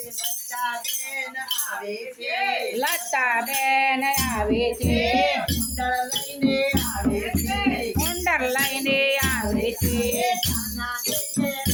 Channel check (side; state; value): both; identical; correlation 1.00